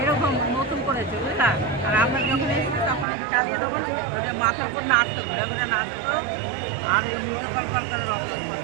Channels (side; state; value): left; drops out; at 3.1 s